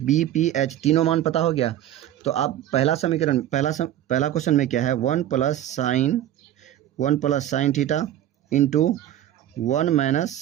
पी एच तीनों मान पता हो गया। तो आप पहला समीकरण, पहला क्वेश्चन में क्या है, 1 plus sine theta into 1 minus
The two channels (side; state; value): left; quieter; 12.2 dB